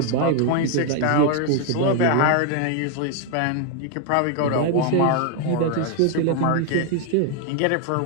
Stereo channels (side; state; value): both; different; correlation 0.00